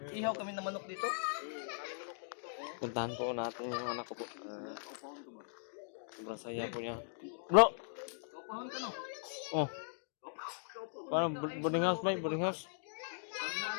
kami ng manok dito. Puntahan po natin yung anak ko po. Sobrang saya po niya. Bro! Oh. Parang boarding house ba? Boarding house?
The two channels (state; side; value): silent; right; digital silence